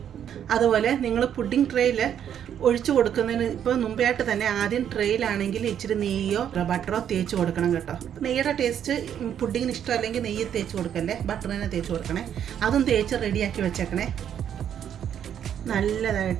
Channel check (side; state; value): left; quieter; 9.3 dB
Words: അതുപോലെ നിങ്ങൾ പുഡിംഗ് ട്രേയിൽ ഒഴിച്ചു കൊടുക്കുന്നതിന് ഇപ്പോൾ മുമ്പായിട്ട് തന്നെ ആദ്യം ട്രേയിലാണെങ്കിൽ ഇച്ചിരി നെയ്യോ ബട്ടറോ തേച്ച് കൊടുക്കണം കേട്ടോ. നെയ്യുടെ ടേസ്റ്റ് പുഡിങ്ങിന് ഇഷ്ടമല്ലെങ്കിൽ നെയ്യ് തേച്ച് കൊടുക്കല്ലേ, ബട്ടർ തന്നെ തേച്ച് കൊടുക്കണേ. അതും തേച്ച് റെഡിയാക്കി വെച്ചേക്കണേ.